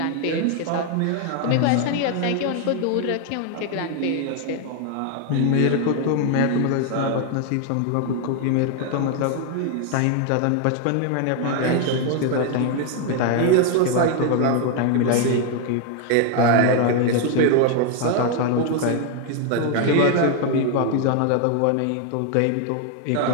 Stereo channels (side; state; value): both; different; correlation 0.01